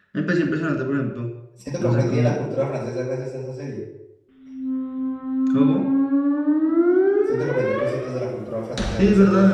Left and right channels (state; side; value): identical; both; correlation 1.00